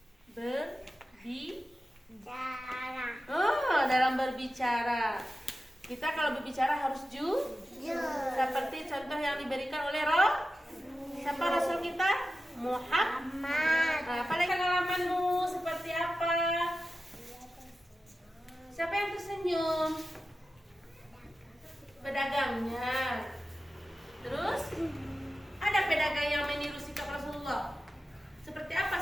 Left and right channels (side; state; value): both; normal; correlation 0.93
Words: Cara. Dalam berbicara. Kita kalau berbicara harus Jujur. seperti contoh yang diberikan oleh siapa Rasul kita? Muhammad. Amat. Apalagi pengalamanmu seperti apa? Siapa yang tersenyum? Pedagangnya. Terus ada pedagang yang meniru sikap Rasulullah. Seperti